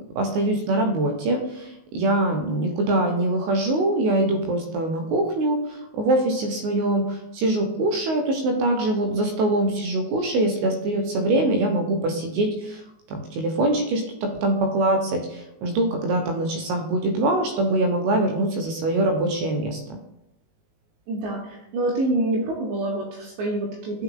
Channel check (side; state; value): left; late; 19 ms